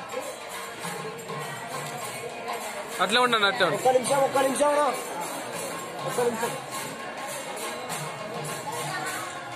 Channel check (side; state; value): both; identical; correlation 1.00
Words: అట్లే ఉండండి. అట్లే ఒక్క నిమిషం. ఒక్క నిమిషం.